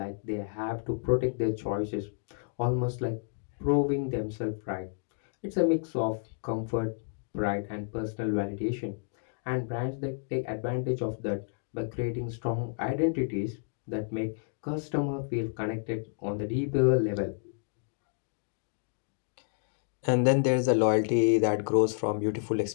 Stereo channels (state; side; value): silent; right; digital silence